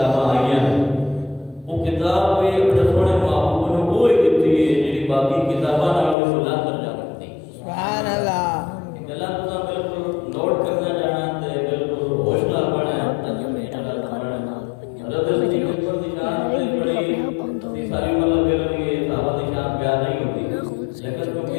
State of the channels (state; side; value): drops out; right; at 6.2 s